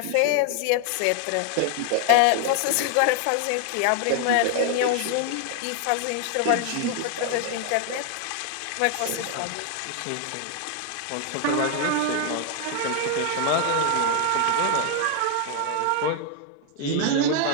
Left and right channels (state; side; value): different; both; correlation 0.00